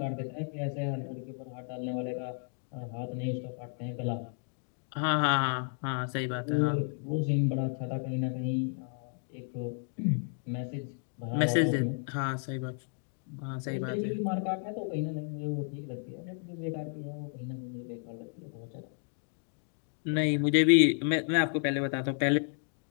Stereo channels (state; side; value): silent; right; 56 dB below the other